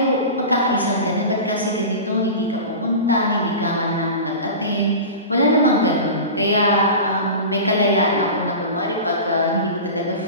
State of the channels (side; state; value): both; inverted; correlation -0.30